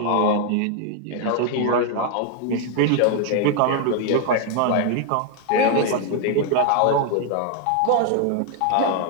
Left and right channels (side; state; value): both; different; correlation 0.00